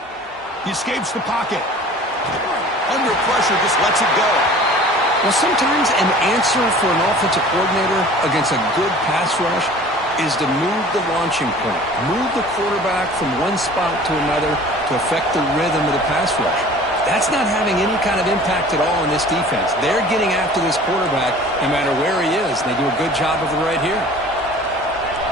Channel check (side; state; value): both; normal; correlation 0.45